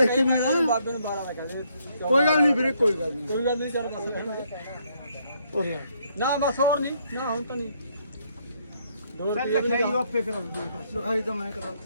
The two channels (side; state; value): both; inverted; correlation -0.71